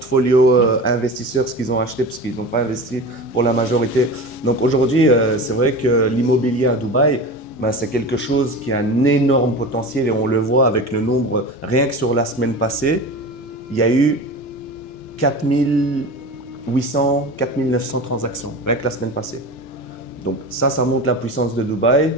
investisseur, ce qu'ils ont acheté, parce qu'ils n'ont pas investi pour la majorité. Donc aujourd'hui, c'est vrai que l'immobilier à Dubaï, c'est quelque chose qui a un énorme potentiel et on le voit avec le nombre, rien que sur la semaine passée, il y a eu 4800, 4900 transactions, rien que la semaine passée. Donc ça montre la puissance de Dubaï.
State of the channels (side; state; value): both; normal; correlation 0.31